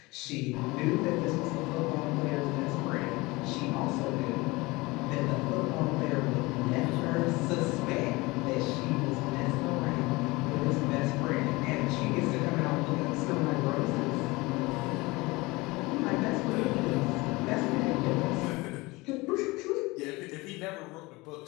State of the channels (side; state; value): right; quieter; 22.9 dB